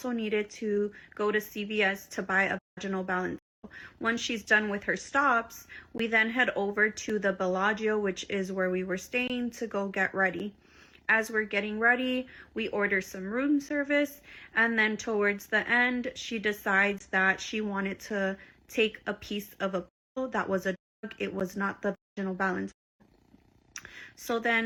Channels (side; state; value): both; identical; correlation 1.00